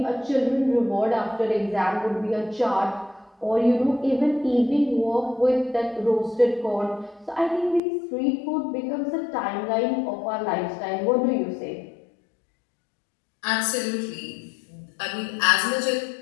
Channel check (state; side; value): drops out; right; at 7.8 s